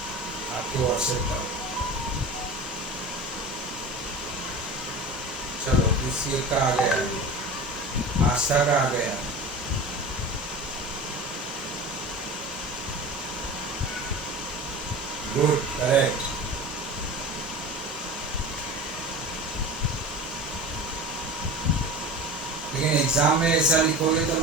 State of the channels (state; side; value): normal; both; correlation 0.34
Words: आपके व्हाट्सएप का। चलो किसी का आ गया, आस्था का आ गया। Good, correct. लेकिन एग्जाम में ऐसा लिखोगे तो